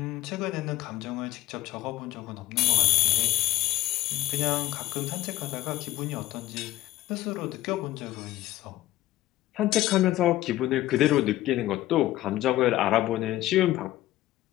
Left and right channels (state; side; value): quieter; right; 15.5 dB